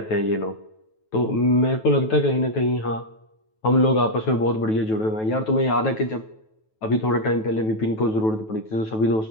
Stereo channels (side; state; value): right; late; 9.2 ms